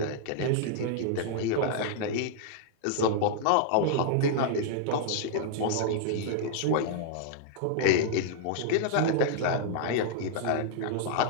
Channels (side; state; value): both; different; correlation -0.01